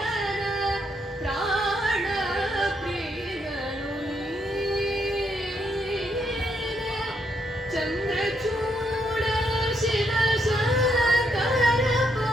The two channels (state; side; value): normal; both; correlation 0.76